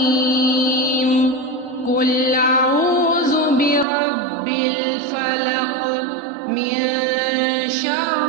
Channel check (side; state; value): left; drops out; at 3.9 s